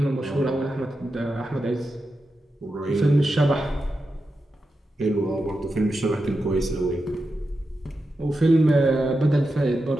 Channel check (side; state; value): both; normal; correlation 0.89